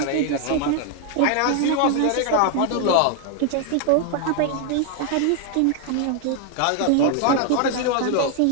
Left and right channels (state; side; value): different; both; correlation 0.00